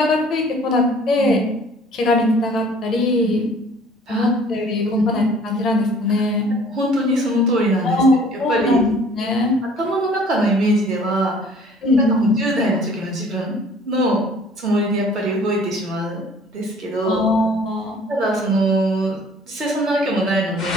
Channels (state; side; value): normal; both; correlation 0.53